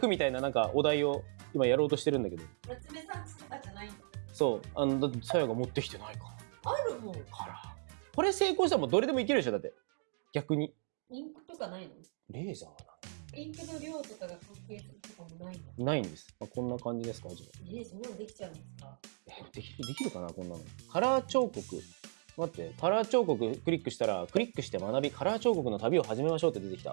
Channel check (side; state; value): left; silent; 54 dB below the other